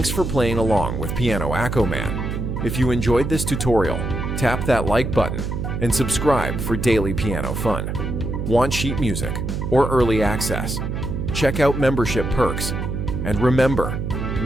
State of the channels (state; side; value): noise; right; hum, 3 dB below the sound